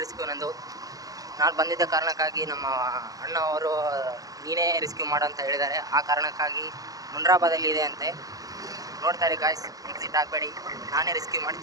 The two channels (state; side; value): late; left; 0.17 ms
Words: ರೆಸ್ಕ್ಯೂ ನಂದು. ನಾನು ಬಂದಿದ್ದ ಕಾರಣಕ್ಕಾಗಿ ನಮ್ಮ ಅಣ್ಣ ಅವರು ನೀನೇ ರೆಸ್ಕ್ಯೂ ಮಾಡು ಅಂತ ಹೇಳಿದ್ದಾರೆ. ಆ ಕಾರಣಕ್ಕಾಗಿ ಮುನ್ರಾಬಾದಲ್ಲಿ ಇದೆ ಅಂತೆ. ನೋಡ್ತಾರೆ ಗಾಯ್ಸ್, ಎಕ್ಸಿಟ್ ಆಗಬೇಡಿ. ನಾನೇ ರೆಸ್ಕ್ಯೂ ಮಾಡಿ